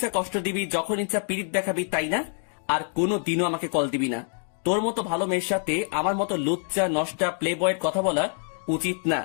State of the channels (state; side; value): silent; right; 56 dB below the other